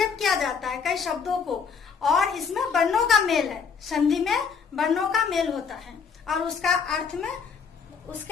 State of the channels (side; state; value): right; quieter; 6.1 dB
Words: किया जाता है कई शब्दों को, और इसमें वर्णों का मेल है। संधि में वर्णों का मेल होता है और उसके अर्थ